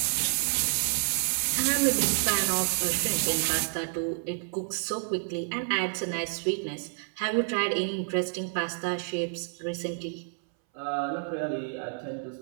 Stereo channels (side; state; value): left; silent; 59 dB below the other